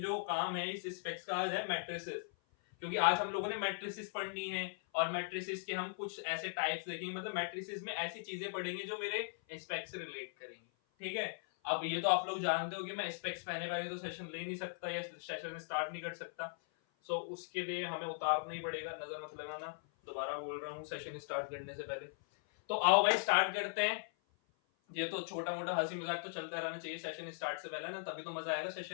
जो काम है इस स्पेक्स का है मैट्रिसेस, क्योंकि आज हम लोगों ने मैट्रिसेस पढ़नी है और मैट्रिसेस के हम कुछ ऐसे टाइप्स देखेंगे, मतलब मैट्रिसेस में ऐसी चीजें पढ़ेंगे जो मेरे स्पेक्स से रिलेट करेंगे. ठीक है. अब ये तो आप लोग जानते हो कि मैं स्पेक्स पहने पहने तो सेशन ले नहीं सकता या सेशन स्टार्ट नहीं कर सकता. सो उसके लिए हमें उतारना ही पड़ेगा, नजर मत लगाना. दोबारा बोल रहा हूँ सेशन स्टार्ट करने से पहले. तो आओ भाई स्टार्ट करते हैं. ये तो छोटा मोटा हंसी मजाक तो चलता रहना चाहिए सेशन स्टार्ट से पहले ना, तभी तो मजा आएगा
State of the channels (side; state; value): right; silent; 52 dB below the other